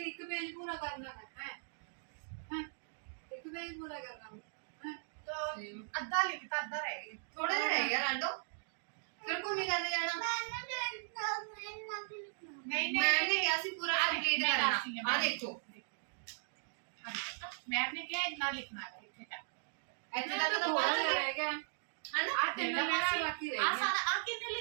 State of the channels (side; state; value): left; silent; digital silence